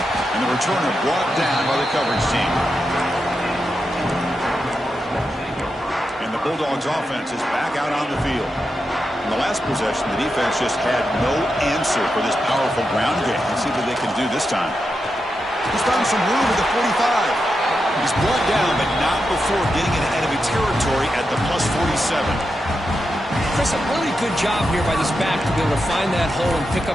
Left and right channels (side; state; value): both; normal; correlation 0.87